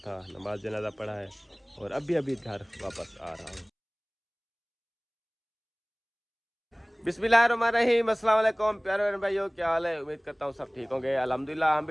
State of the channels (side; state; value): both; identical; correlation 1.00